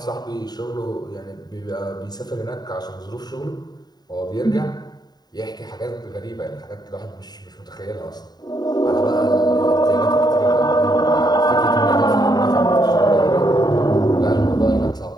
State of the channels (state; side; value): late; right; 0.20 ms